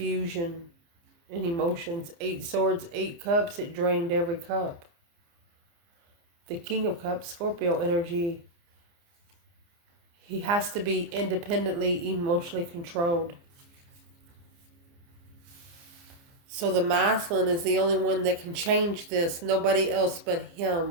and emotions. 8 swords, 8 cups. It drained every cup. The King of Cups, Scorpio energy. He has to be independently emotionally controlled. So the masculine is the only one that can change this. Nobody else but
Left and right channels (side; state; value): left; late; 29 ms